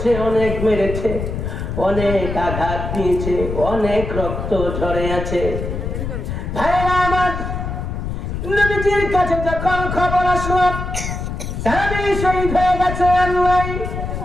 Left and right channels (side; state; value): left; noise; rumble, 5 dB below the sound